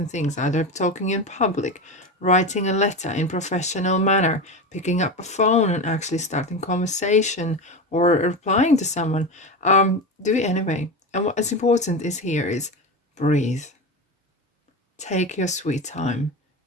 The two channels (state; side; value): normal; both; correlation 0.22